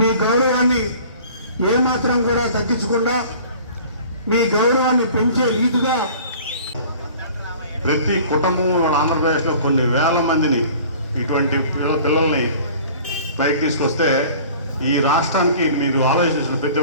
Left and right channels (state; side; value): inverted; both; correlation -0.47